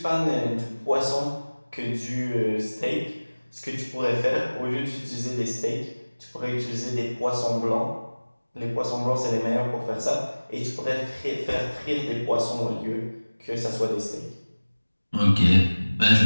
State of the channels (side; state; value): both; inverted; correlation -1.00